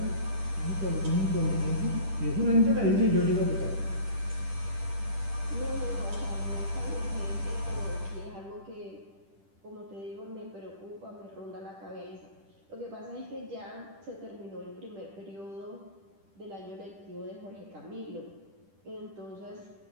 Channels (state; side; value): late; left; 10 ms